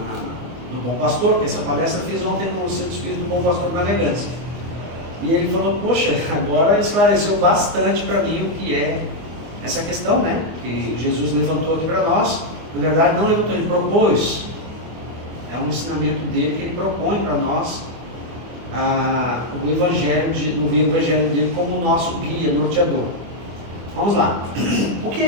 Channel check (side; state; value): left; late; 24 ms